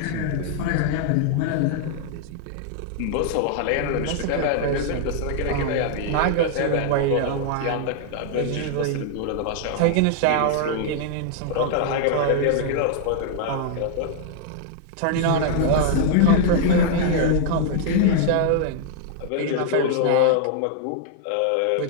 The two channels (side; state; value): both; different; correlation 0.00